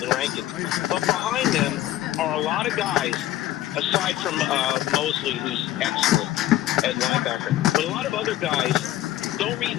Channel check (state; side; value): quieter; right; 13.9 dB